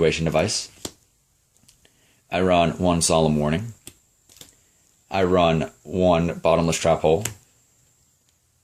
Device. I run 1 Solemn Warning. I run 1 Bottomless Trap Hole.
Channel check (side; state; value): both; identical; correlation 1.00